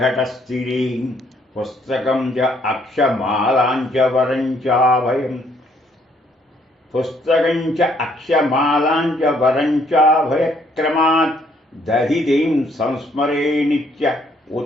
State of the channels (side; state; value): both; normal; correlation 0.67